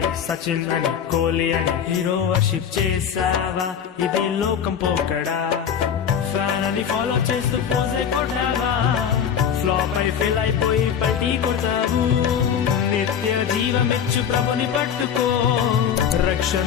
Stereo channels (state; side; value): quieter; right; 8.1 dB